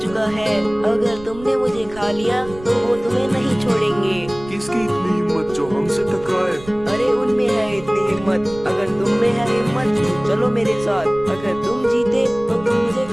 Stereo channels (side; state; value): right; noise; rumble, 17 dB below the sound